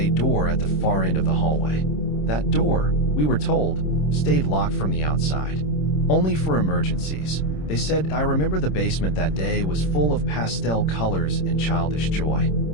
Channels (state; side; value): late; right; 26 ms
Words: door at the far end of the hallway. That door, we were told, stayed locked from the outside. Only for emergencies. They said, I remember the basement that day was full of pastel colors and childish joy.